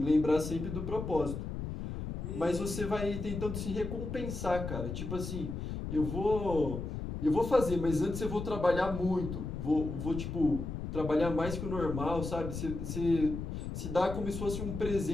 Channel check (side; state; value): left; noise; rumble, 5 dB below the sound